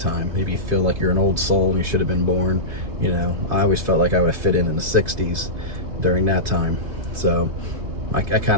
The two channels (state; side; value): late; left; 2.5 ms